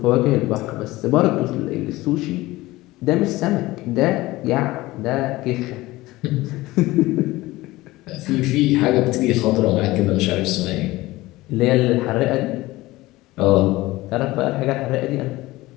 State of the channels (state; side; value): quieter; right; 18.9 dB